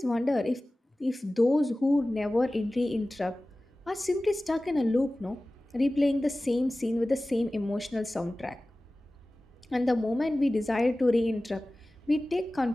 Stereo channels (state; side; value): normal; both; correlation 0.97